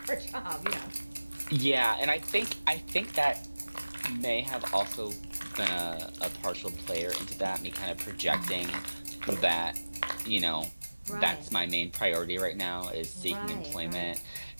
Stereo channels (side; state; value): both; inverted; correlation -1.00